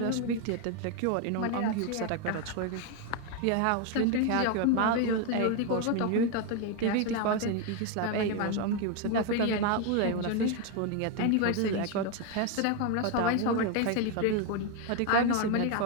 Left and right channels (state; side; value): different; both; correlation 0.01